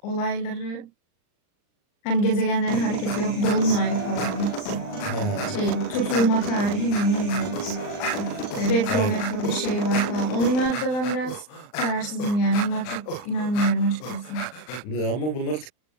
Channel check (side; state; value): right; late; 39 ms